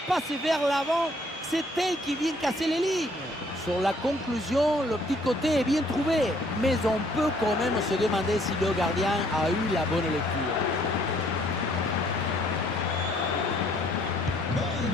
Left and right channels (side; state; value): both; normal; correlation 0.63